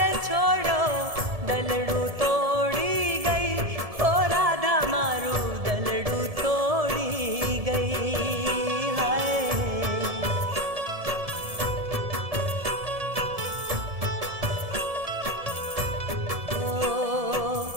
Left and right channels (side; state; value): left; late; 1.7 ms